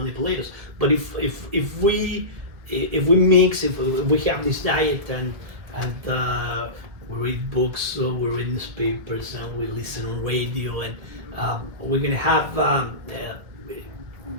us. But if we mix, if we have this diet and we read books, we read newspapers, and we listen on radio, and we're gonna have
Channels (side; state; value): left; late; 2.0 ms